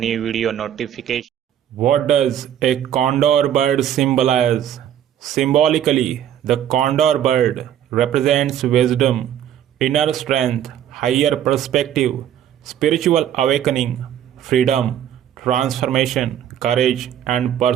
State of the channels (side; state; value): left; quieter; 10.4 dB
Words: video notification. What does a condor bird symbolize? Symbolically, the condor bird represents wisdom, inner strength, higher perspective, spiritual awakening, freedom, transformation, courage, and